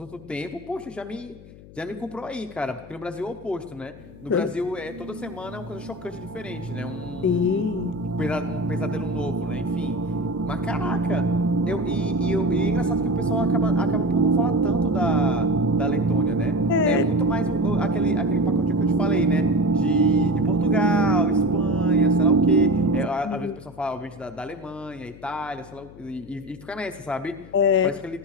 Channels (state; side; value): noise; left; hum, 20 dB below the sound